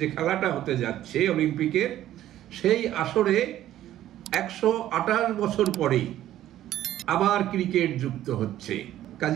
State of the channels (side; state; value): left; quieter; 12.9 dB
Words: যে খেলাটা হতে যাচ্ছে অলিম্পিকের, সেই আসরে 128 বছর পরেই আবার ক্রিকেট যুক্ত হচ্ছে।